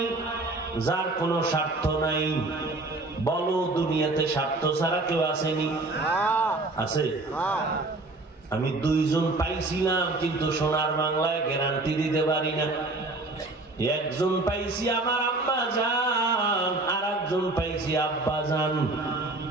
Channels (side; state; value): left; quieter; 3.0 dB